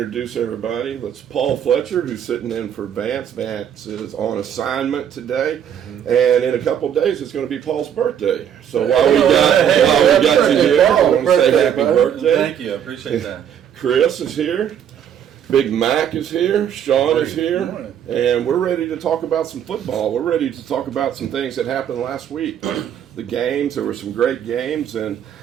everybody. It's Paul Fletcher, who's sitting in for Vance. Vance is on assignment today. And in a couple of days, it's going to be Paul's birthday. So while we got you here, I want to say happy birthday. Thank you. I appreciate that. Chris is here. Big Mac is here. Sean is here. And we're ready to talk about some football. We're ready to talk about some things that happened last week. The games, there were some great games. And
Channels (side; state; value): left; quieter; 9.2 dB